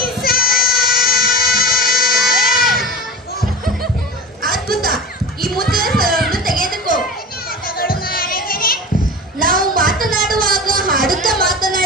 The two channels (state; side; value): normal; both; correlation 0.31